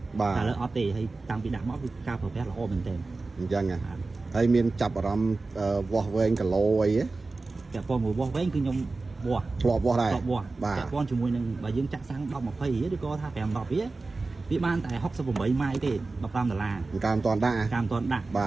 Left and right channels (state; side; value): quieter; left; 3.6 dB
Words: តែឥឡូវអត់ទេហើយតាំងពីដាក់មកគឺការប្រើប្រាស់ល្អមែនទែនអញ្ចឹងហើយមានចាប់អារម្មណ៍វាស់វែងគីឡូអីទេពាក់ព័ន្ធមួយវាស់វែងគឺខ្ញុំវាស់ធ្លាប់វាស់ដែរពាក់ព័ន្ធជាមួយនឹងបើយើងចាក់សាំង10 20រៀលឬក៏ថា5 10រៀលវាបានតែ68ម៉ាយទេ$15ការមិនតាន់ដាក់